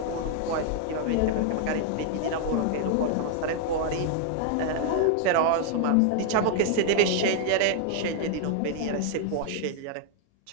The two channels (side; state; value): both; different; correlation 0.00